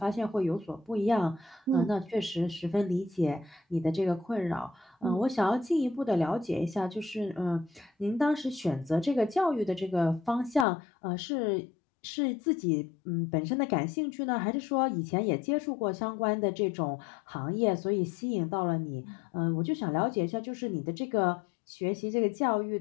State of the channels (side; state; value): right; drops out; at 10.7 s